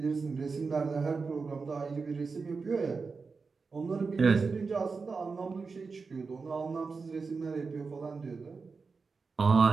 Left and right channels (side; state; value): left; quieter; 4.7 dB